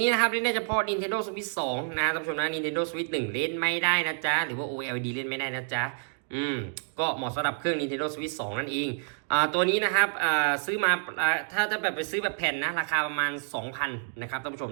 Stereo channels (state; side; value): silent; left; 59 dB below the other